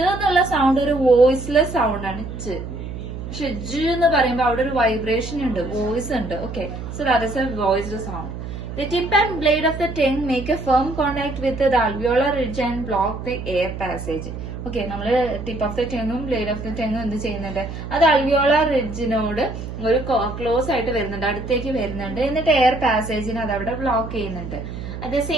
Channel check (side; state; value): right; noise; hum, 8 dB below the sound